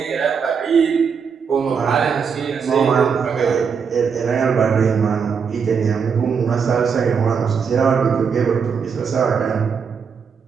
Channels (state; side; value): quieter; left; 6.3 dB